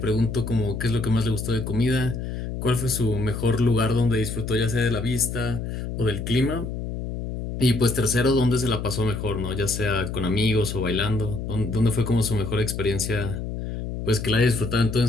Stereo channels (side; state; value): left; noise; hum, 5 dB below the sound